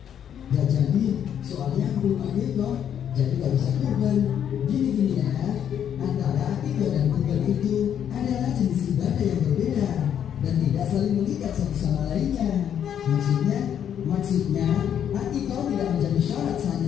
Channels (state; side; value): quieter; right; 9.2 dB